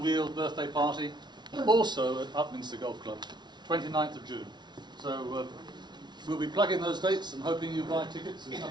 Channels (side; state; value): left; late; 0.21 ms